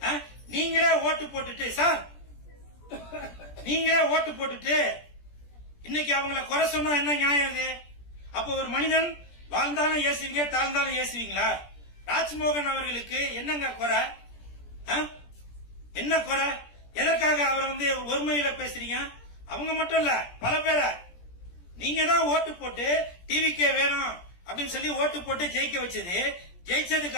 நீங்களே ஓட்டு போட்டுட்டு சார், நீங்களே ஓட்டு போட்டுட்டு இன்னைக்கு அவங்கள குறை சொன்னா என்ன நியாயம் இது? அப்போ ஒரு மனிதன் வாழ்ந்தாலும் ஏசுவீங்க, தாழ்ந்தாலும் ஏசுவீங்களா? ராஜ்மோகன் அவர்களுக்கு என்னங்க குறை? என்ன குறை? எதற்காக அவர் வந்து ஒருமையில பேசுறீங்க? அவங்க மட்டும் இல்ல, பல பேரை நீங்க தான் ஓட்டு போட்டு டிவிக்கே வேணும் அப்படின்னு சொல்லி ஓட்டு போட்டு ஜெயிக்க வச்சது. ஜெயிச்சதுக்கு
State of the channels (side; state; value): right; late; 17 ms